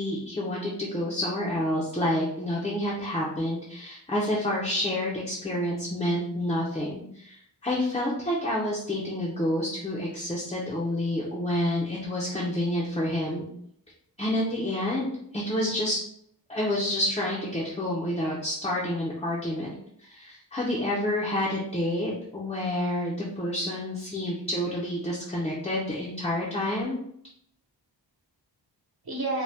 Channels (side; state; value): both; normal; correlation 0.43